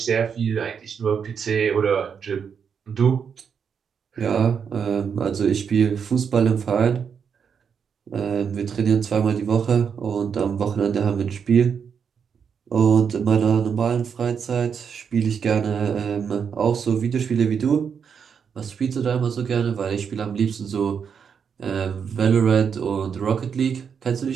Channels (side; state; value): left; quieter; 6.9 dB